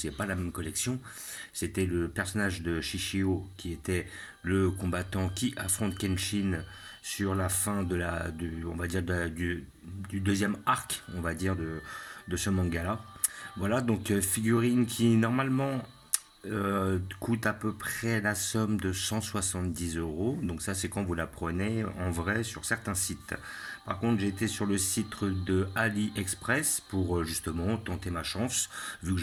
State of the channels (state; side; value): identical; both; correlation 1.00